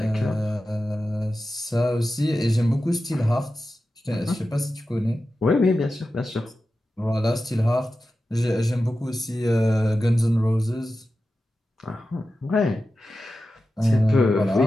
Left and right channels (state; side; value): normal; both; correlation 0.93